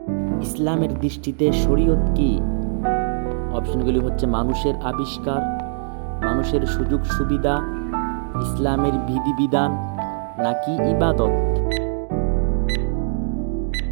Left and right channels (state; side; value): silent; left; digital silence